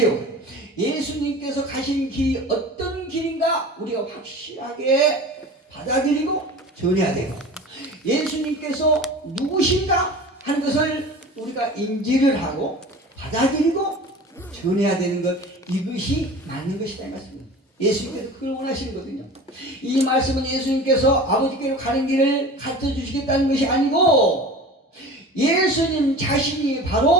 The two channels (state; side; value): normal; both; correlation 0.37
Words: 예수님께서 가신 길이 어떤 길인가 우리가 확실하게 받아들이고 전해야 돼요. 예수님께서 누구신가 하는 것을 우리가 인지를 하고 받아들이고 전해야 되는 것, 이것이 맞는 것이다 이 말씀입니다. 예수님께서 그걸 원하시는 거거든요. 이 말씀은 예수님께서 아버지께로 가는 길을 가르쳐 주시겠다는 것이 아니고, 예수님 자신이